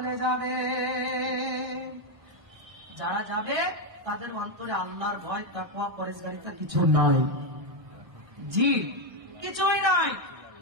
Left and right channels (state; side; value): late; left; 1.6 ms